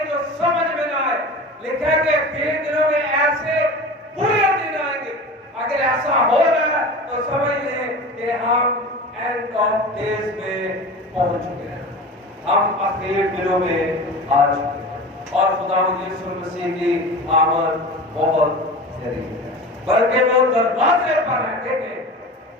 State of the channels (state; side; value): normal; both; correlation 0.33